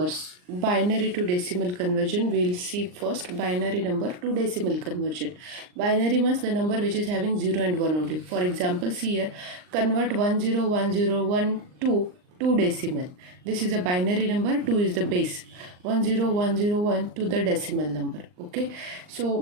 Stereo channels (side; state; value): left; late; 39 ms